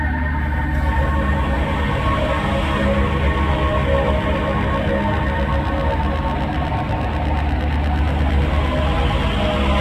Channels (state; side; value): identical; both; correlation 1.00